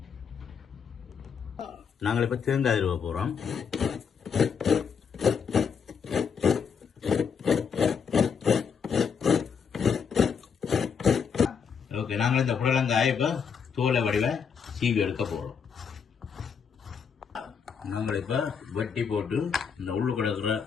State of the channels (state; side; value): quieter; right; 6.5 dB